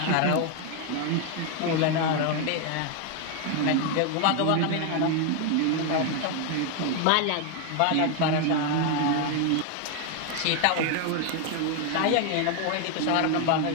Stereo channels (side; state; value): both; different; correlation 0.01